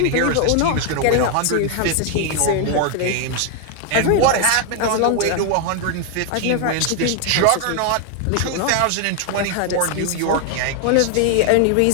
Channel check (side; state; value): both; different; correlation 0.00